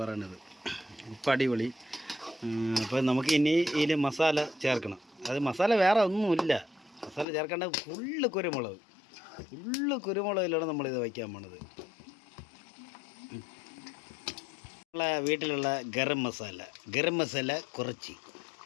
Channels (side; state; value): right; drops out; at 7.2 s